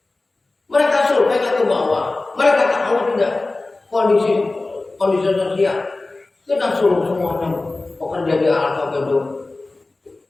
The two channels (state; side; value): quieter; right; 3.2 dB